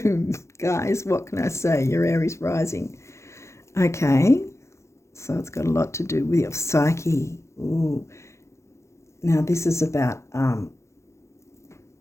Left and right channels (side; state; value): right; late; 0.14 ms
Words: guys, what can I say? You're Aries rising. Okay, so it's got a lot to do with your psyche. Ooh. Now, this is about